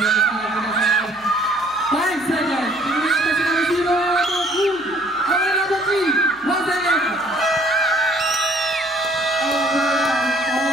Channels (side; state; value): left; noise; hum, 28 dB below the sound